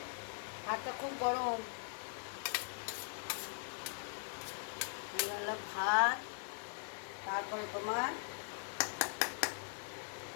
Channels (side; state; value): right; silent; digital silence